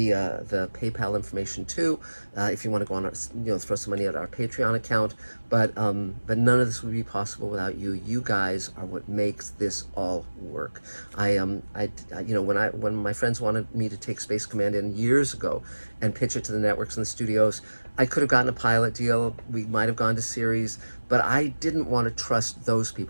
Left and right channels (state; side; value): inverted; both; correlation -1.00